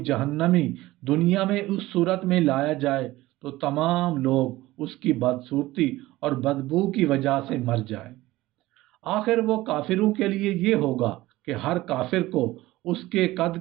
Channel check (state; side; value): quieter; left; 17.7 dB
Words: دنیا میں اس صورت میں لایا جائے تو تمام لوگ اس کی بدصورتی اور بدبو کی وجہ سے مر جائیں۔ آخر وہ کافروں کے لیے یہ ہوگا کہ ہر کافر کو اس کے